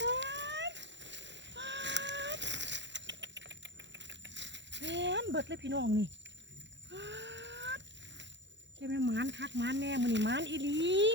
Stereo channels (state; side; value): late; left; 0.52 ms